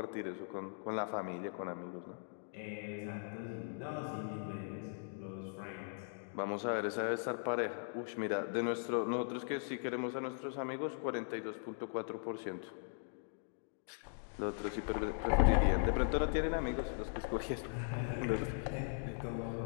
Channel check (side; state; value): right; silent; digital silence